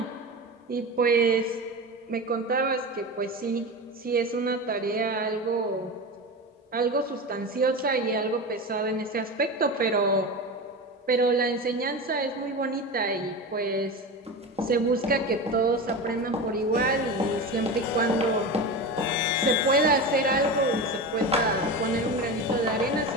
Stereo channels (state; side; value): normal; both; correlation 0.25